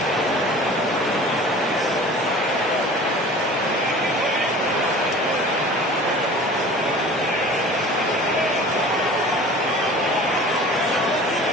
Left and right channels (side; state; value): both; normal; correlation 0.42